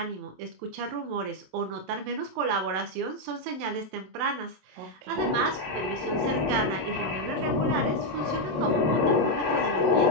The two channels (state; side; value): late; left; 27 ms